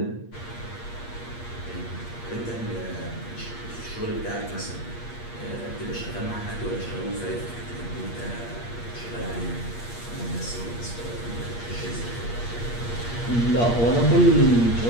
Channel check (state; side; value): late; right; 8.5 ms